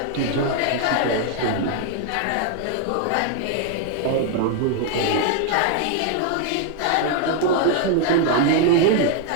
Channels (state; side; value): different; both; correlation 0.00